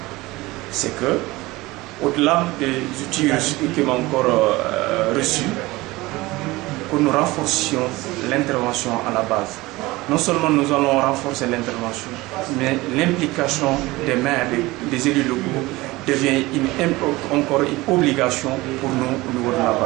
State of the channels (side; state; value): left; quieter; 20.4 dB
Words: c'est que, au-delà des outils qui m'ont encore reçus, que nous renforcions l'intervention à la base. Non seulement nous allons renforcer l'intervention, mais l'implication des maires, des élus locaux devient encore une obligation pour nous au niveau de la